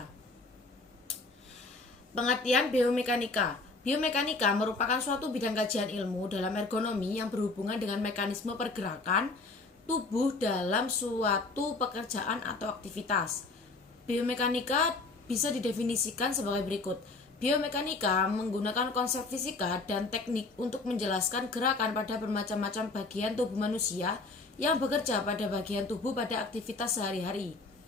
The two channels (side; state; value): right; quieter; 3.6 dB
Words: Pengertian biomekanika. Biomekanika merupakan suatu bidang kajian ilmu dalam ergonomi yang berhubungan dengan mekanisme pergerakan tubuh dalam suatu pekerjaan atau aktivitas. Biomekanika bisa didefinisikan sebagai berikut. Biomekanika menggunakan konsep fisika dan teknik untuk menjelaskan gerakan pada bermacam-macam bagian tubuh manusia yang bekerja pada bagian tubuh pada aktivitas sehari-hari.